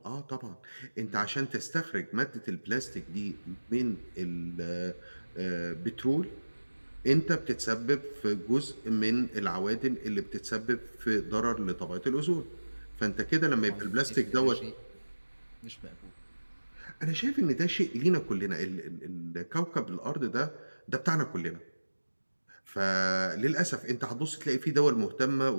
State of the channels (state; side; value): inverted; both; correlation -1.00